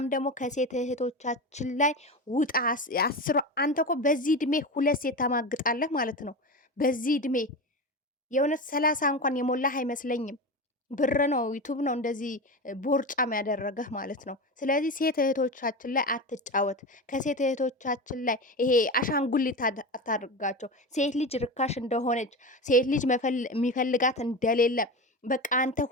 ደግሞ ከሴት እህቶቻችን ላይ ውጣ። አንተ እኮ በዚህ እድሜ 2 ሴት ታማግጣለህ ማለት ነው። በዚህ እድሜ የእውነት 30 እንኳን የሞላህ አይመስለኝም። ብር ነው ዩቱብ ነው እንደዚህ ቦርጫም ያደረገህ ማለት ነው። ስለዚህ ሴት እህቶቻችን ላይ አትጫወት። ከሴት እህቶቻችን ላይ ይሄ አሻንጉሊት አታድርጋቸው። ሴት ልጅ ርካሽ እንደሆነች፣ ሴት ልጅ የሚፈልጋት እንደሌለ፣ በቃ አንተ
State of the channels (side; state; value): both; normal; correlation 0.24